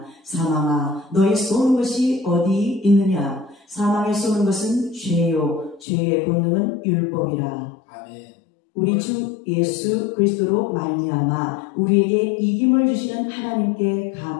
사망아, 너의 쏘는 것이 어디 있느냐? 사망에 쏘는 것은 죄요 죄의 본능은 율법이라. 아멘. 우리 주 예수 그리스도로 말미암아 우리에게 이김을 주시는 하나님께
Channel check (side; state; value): right; drops out; at 5.9 s